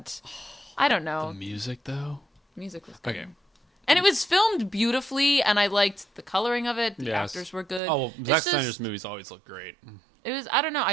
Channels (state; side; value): drops out; left; at 7.8 s